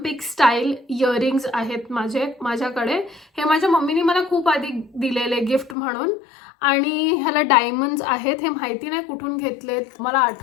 स्टाईल इयरिंग्स आहेत माझ्याकडे. हे माझ्या मम्मीने मला खूप आधी दिलेले गिफ्ट म्हणून आणि ह्याला डायमंड्स आहेत. हे माहिती नाही कुठून घेतलेत, मला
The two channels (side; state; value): right; drops out; at 5.8 s